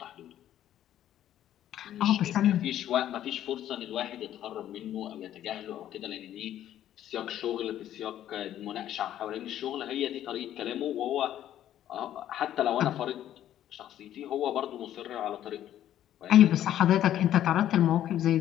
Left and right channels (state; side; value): quieter; right; 11.7 dB